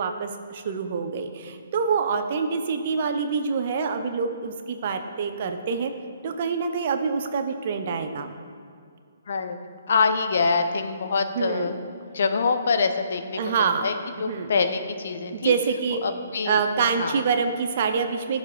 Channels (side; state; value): both; inverted; correlation -0.65